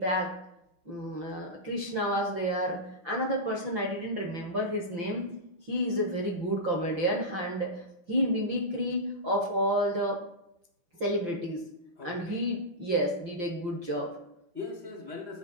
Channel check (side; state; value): left; late; 5.9 ms